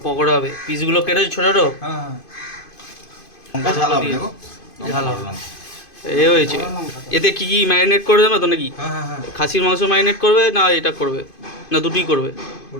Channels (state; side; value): late; right; 2.5 ms